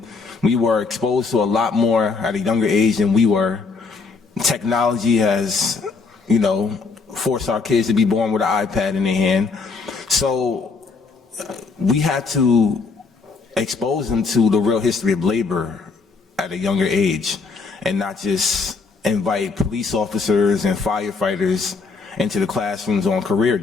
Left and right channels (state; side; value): quieter; right; 4.5 dB